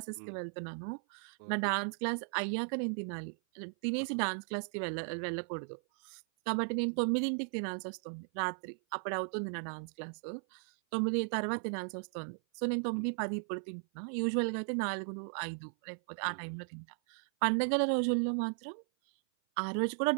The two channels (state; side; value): silent; left; 54 dB below the other